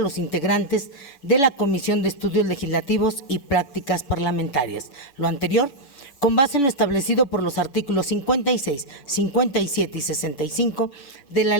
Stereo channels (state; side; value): late; right; 7.0 ms